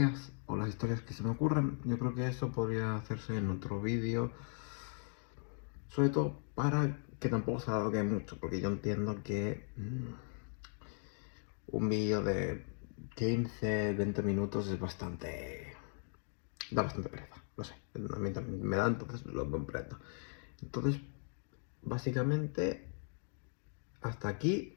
o las historias que se me ocurren. Yo creo que eso podría hacerse en otro vídeo, sobre todo para que tampoco se alargue mucho, porque yo entiendo que un vídeo de 15-20 minutos es bastante... da bastante pereza, lo sé, a mí también me da, entonces lo comprendo. Entonces, básicamente, hasta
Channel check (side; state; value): right; silent; 52 dB below the other